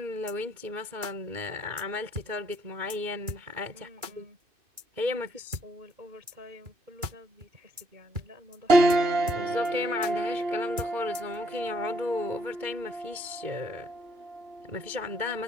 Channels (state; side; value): late; left; 2.3 ms